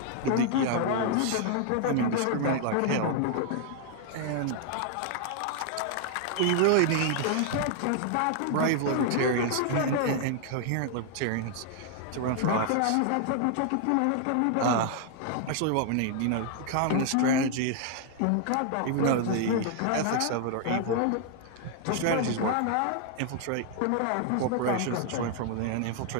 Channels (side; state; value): both; different; correlation 0.00